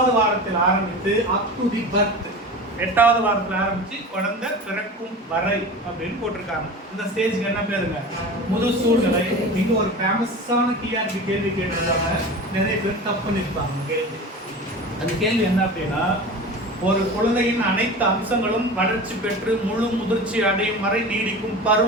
வாரத்தில் ஆரம்பித்து அப் டு தி பர்த், 8வது வாரத்தில் ஆரம்பிச்சு குழந்தை பிறக்கும் வரை அப்படின்னு போட்டிருக்காங்க. இந்த ஸ்டேஜ்க்கு என்ன பேருங்க? முதுசூழ்நிலை. இங்க ஒரு ஃபேமஸான டிஆர்பி கேள்வி கேட்டிருக்காங்க, நிறைய பேர் தப்பு பண்ணிருப்பாங்க கேள்வி. அந்த கேள்வி என்ன அப்படின்னா ஒரு குழந்தையின் அனைத்து அம்சங்களும் வளர்ச்சி பெற்று முழு முதிர்ச்சி அடையும் வரை நீடிக்கும்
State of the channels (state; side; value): normal; both; correlation 0.33